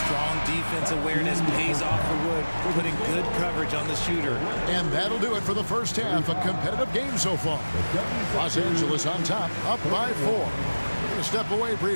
Strong defense awareness pays off for Wood, putting good coverage on the shooter. And that'll do it for the first half. A competitive game so far. Los Angeles on top, up by 4. We're going to step away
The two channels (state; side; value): inverted; both; correlation -1.00